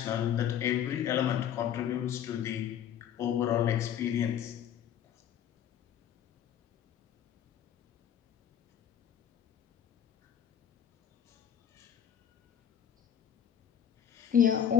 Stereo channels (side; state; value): right; quieter; 9.5 dB